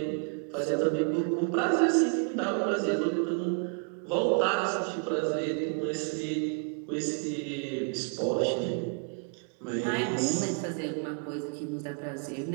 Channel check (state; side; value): quieter; left; 38.8 dB